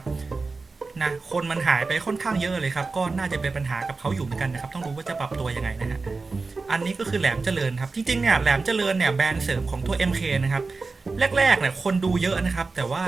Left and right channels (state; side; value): quieter; left; 4.0 dB